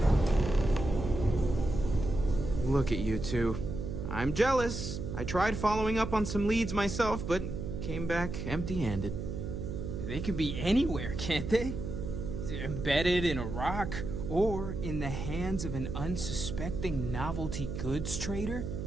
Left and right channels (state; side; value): noise; right; hum, 5 dB below the sound